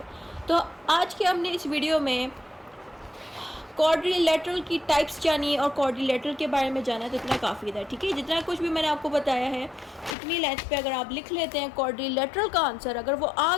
तो आज के हमने इस वीडियो में क्वाड्रिलेटरल की टाइप्स जानी और क्वाड्रिलेटरल के बारे में जाना, तो इतना काफ़ी था, ठीक है। जितना कुछ भी मैंने आपको बताया है इतनी लेंथ पे अगर आप लिख लेते हैं क्वाड्रिलेटरल का आंसर, अगर वो आ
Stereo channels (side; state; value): right; drops out; at 10.2 s